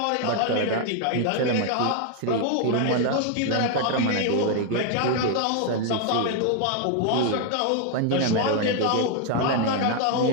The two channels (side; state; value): both; different; correlation 0.01